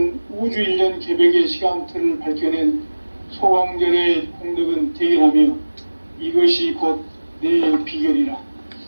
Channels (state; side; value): inverted; both; correlation -1.00